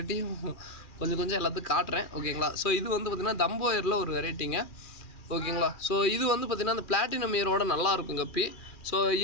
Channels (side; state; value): right; late; 2.4 ms